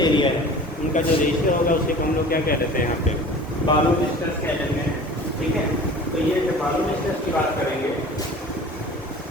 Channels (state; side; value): normal; both; correlation 0.42